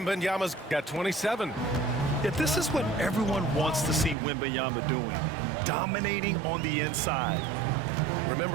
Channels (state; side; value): drops out; left; at 4.2 s